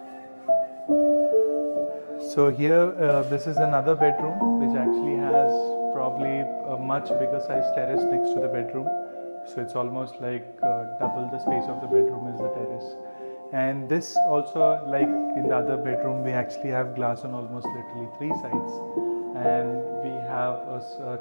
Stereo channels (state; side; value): inverted; both; correlation -1.00